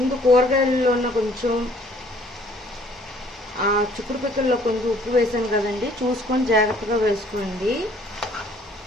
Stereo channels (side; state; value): both; normal; correlation 0.58